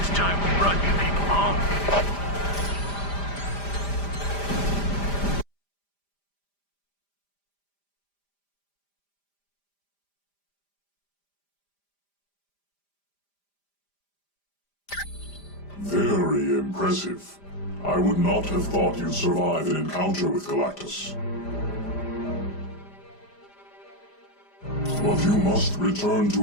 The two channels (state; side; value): late; right; 5.0 ms